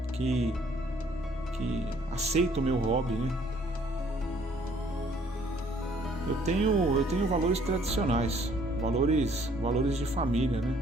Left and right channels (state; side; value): normal; both; correlation 0.61